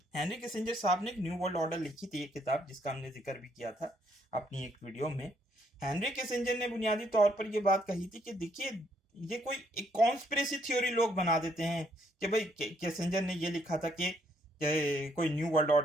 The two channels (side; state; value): both; normal; correlation 0.70